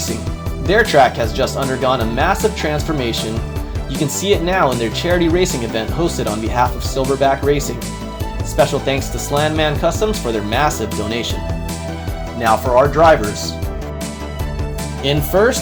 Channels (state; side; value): identical; both; correlation 1.00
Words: Their track has just undergone a massive transformation. You can see it now in their charity racing event hosted on behalf of Silverback Racing. Special thanks to Slandman Customs for their massive donation. Now for our drivers. In